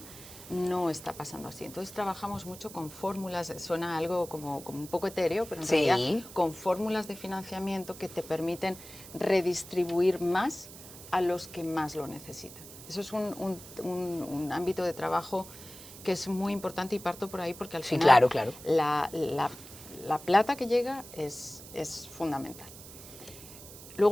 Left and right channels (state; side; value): noise; right; hiss, 16 dB below the sound